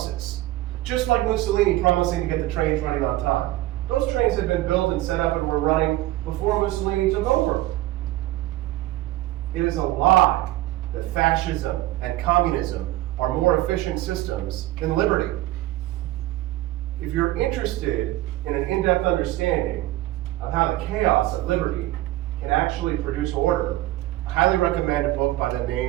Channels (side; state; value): left; quieter; 16.5 dB